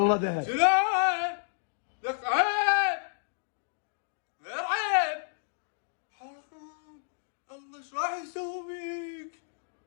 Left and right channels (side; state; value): right; silent; digital silence